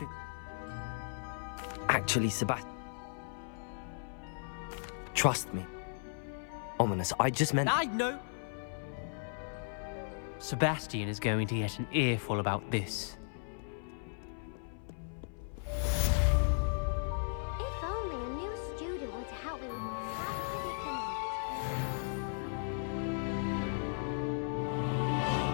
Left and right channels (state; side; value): silent; right; 54 dB below the other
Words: Actually, Sebastian, Trust me. Ominous, I just meant... I know! Sebastian is going to get an earful about this. If only a new student were to help me with my predicament.